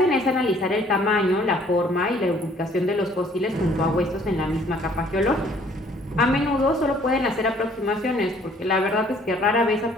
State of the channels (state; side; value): normal; both; correlation 0.59